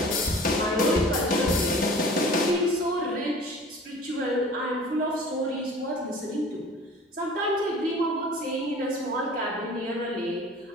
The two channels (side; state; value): both; normal; correlation 0.45